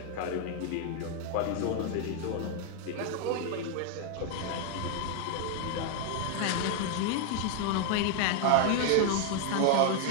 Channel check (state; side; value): different; both; correlation 0.00